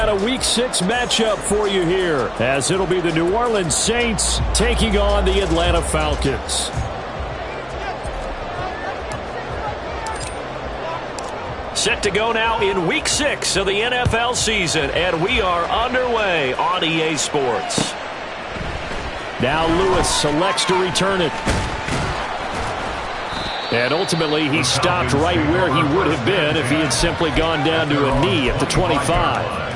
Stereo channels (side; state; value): both; identical; correlation 1.00